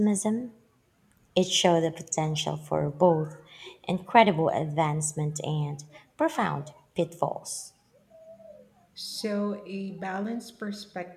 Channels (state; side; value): identical; both; correlation 1.00